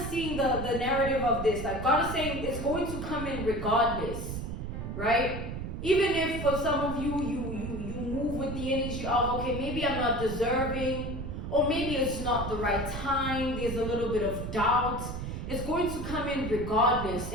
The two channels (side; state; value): right; noise; rumble, 6 dB below the sound